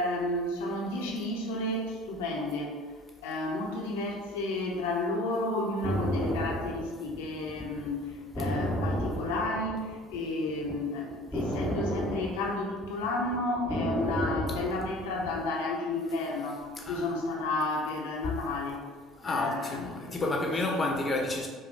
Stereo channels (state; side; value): normal; both; correlation 0.47